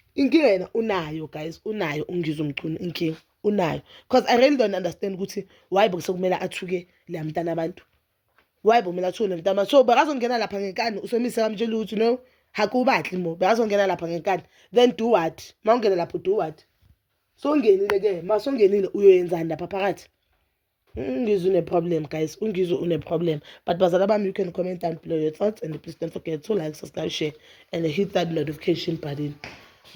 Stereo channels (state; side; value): identical; both; correlation 1.00